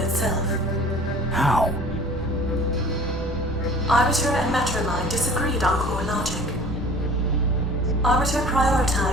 How? Arbiter and Metromind disagreed on core logic. Arbiter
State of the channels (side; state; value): both; normal; correlation 0.46